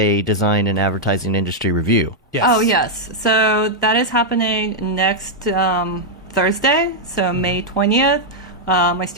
Design and Advertising Industry Review. Yes. Oh, yes. So that is happening next Thursday, so May 20th. My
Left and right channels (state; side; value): normal; both; correlation -0.03